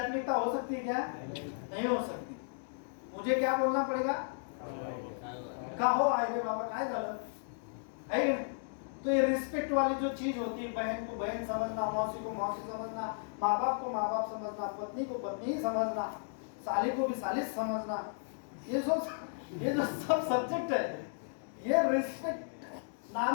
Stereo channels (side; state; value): right; silent; digital silence